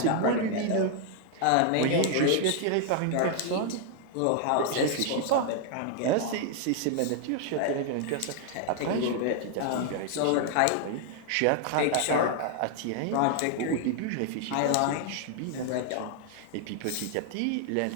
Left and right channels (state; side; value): different; both; correlation 0.00